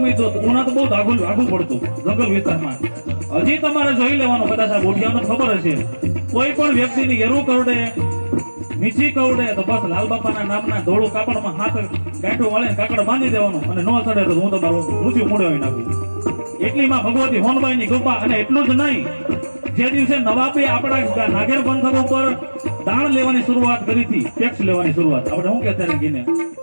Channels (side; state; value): both; inverted; correlation -1.00